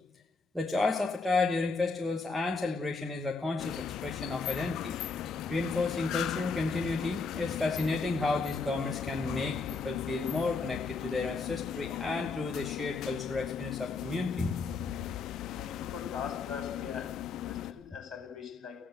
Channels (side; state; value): right; quieter; 4.2 dB